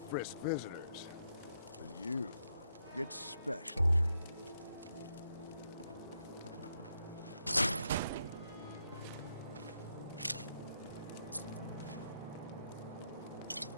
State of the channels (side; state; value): both; inverted; correlation -0.79